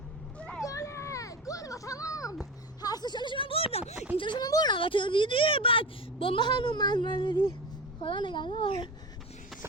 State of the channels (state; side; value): normal; both; correlation 0.27